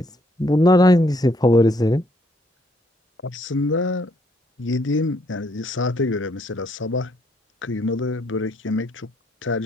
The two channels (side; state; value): both; normal; correlation 0.69